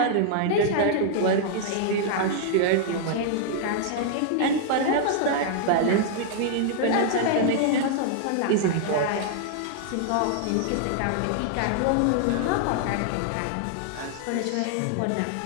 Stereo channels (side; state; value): both; different; correlation -0.01